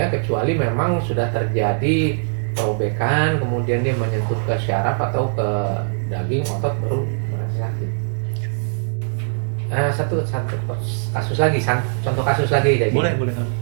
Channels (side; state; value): left; silent; digital silence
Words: kecuali memang sudah terjadi perobekan, kemudian dia menyentuh ke syaraf atau ke daging otot baru merasa sakit. Satu kasus lagi, contoh kasus lagi. Jadi, boleh.